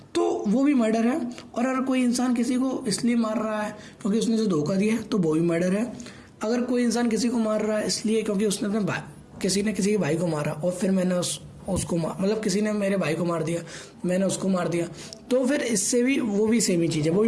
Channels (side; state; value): both; identical; correlation 1.00